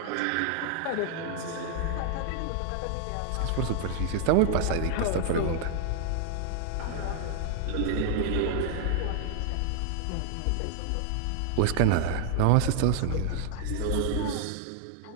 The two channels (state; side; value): different; both; correlation 0.00